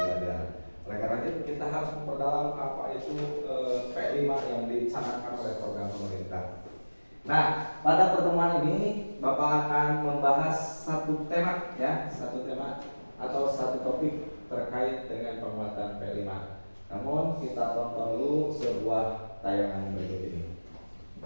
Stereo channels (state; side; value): inverted; both; correlation -1.00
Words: Oleh karena itu kita harus memperdalam apa itu P5 yang dicanangkan oleh program pemerintah. Nah, pada pertemuan ini Bapak akan membahas satu tema ya, satu tema atau satu topik terkait dengan penguatan P5. Namun kita tonton dulu sebuah tayangan berikut ini.